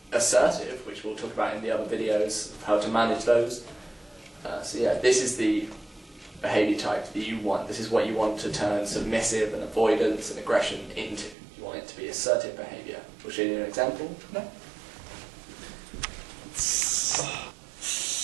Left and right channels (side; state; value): left; drops out; at 11.4 s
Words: assertive, which we'll talk about in the other videos of how to manage those. This is the behaviour type that you want. This is what you want to turn submissive and avoidance and aggression into. You want it to be assertive behaviour. We'll show you an example. No.